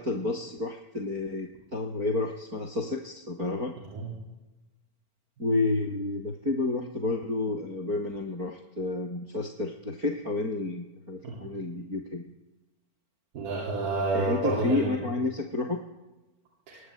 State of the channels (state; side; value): late; left; 4.4 ms